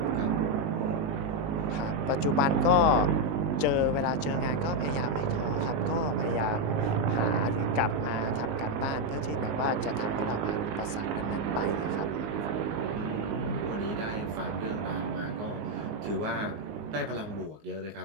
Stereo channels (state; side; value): late; left; 19 ms